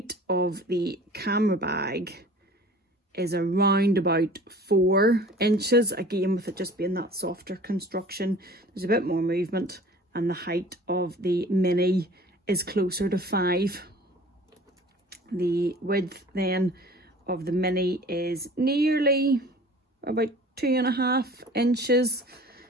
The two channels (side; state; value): both; normal; correlation 0.46